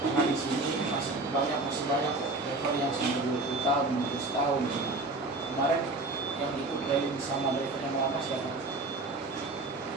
di sini masih banyak level yang sampai 20 tahun, 15 tahun. Kemarin yang ikut training sama driver yang lama siapa?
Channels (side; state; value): left; quieter; 3.0 dB